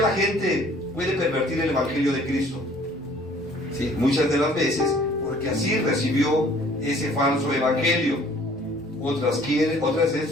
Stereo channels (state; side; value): normal; both; correlation 0.55